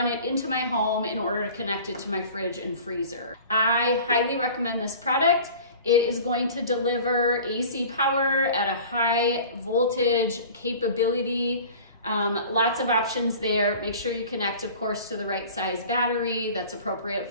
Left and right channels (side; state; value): both; inverted; correlation -0.42